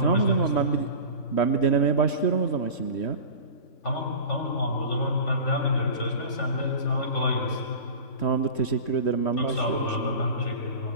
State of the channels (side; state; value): right; late; 3.1 ms